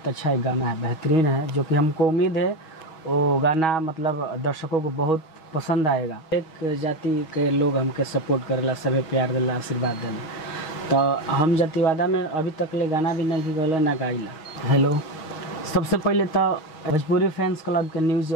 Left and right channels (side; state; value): right; late; 6.3 ms